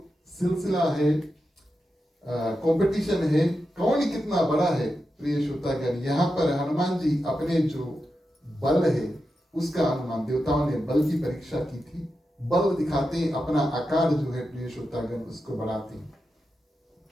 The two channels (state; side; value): normal; both; correlation 0.89